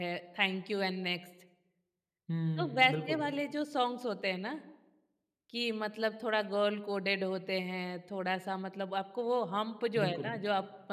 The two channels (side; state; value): both; identical; correlation 1.00